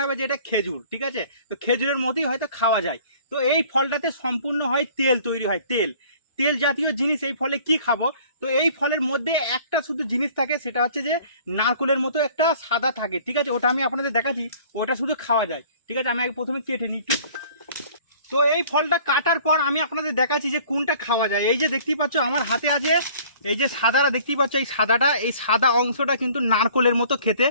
হবে যে এটা খেজুর, ঠিক আছে, তো খেজুরের মতোই হয়তো খাওয়া যায়। তো এই ফলটাতে সম্পূর্ণ হয় তেল তৈরি হয়, তেল তেল জাতীয় জিনিস এই ফলে কি খাবো। তো এই ফলের মধ্যে একটা শুধু জিনিস থাকে, সেটা হচ্ছে যে নারকলের মতো একটা সাদা থাকে, ঠিক আছে, ওটা আমি আপনাদের দেখাচ্ছি, ওটা শুধু খাওয়া যায়, ঠিক আছে। আমি আগে প্রথমে কেটে নিই একটু। তো এই ফলটা কাটার পর আমি আপনাদের দেখাচ্ছি যে কোনটা খাওয়া যায়। এই যে দেখতেই পাচ্ছ আমার হাতে আছে এই যে সাদাটা দেখতেই পাচ্ছ, এই সাদাটা, এই সাদা অংশটা কিন্তু নারকলের মতো খেতে,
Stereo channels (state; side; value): inverted; both; correlation -0.52